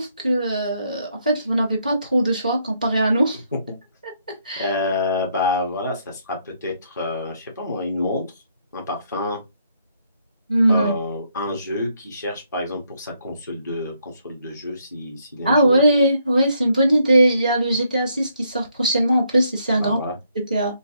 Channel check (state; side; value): inverted; both; correlation -0.73